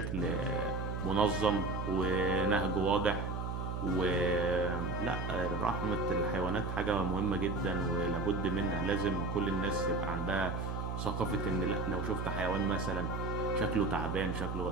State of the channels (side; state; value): right; noise; hum, 3 dB below the sound